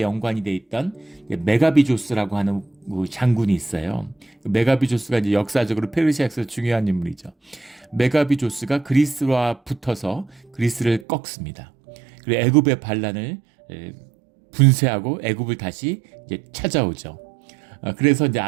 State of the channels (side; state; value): left; drops out; at 11.1 s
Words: 연관이 돼 있던 메가비조스라고 하는 장군이 있어요. 메가비조스가 이제 역사적으로 페르시아에서 중요한 인물이죠. 메가비조스가 그리스와 붙어서 그리스를 꺾습니다. 그리고 애굽의 반란을 분쇄하고 애굽을 다시 이제 찾아오죠. 그래서 이제